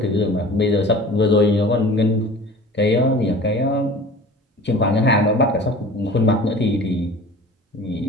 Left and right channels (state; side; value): normal; both; correlation 0.42